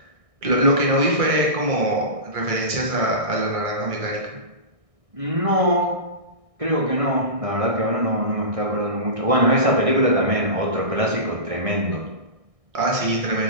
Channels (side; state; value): left; late; 1.6 ms